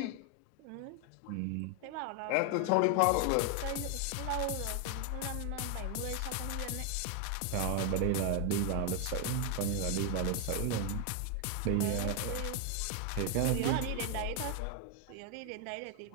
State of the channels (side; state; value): both; different; correlation 0.01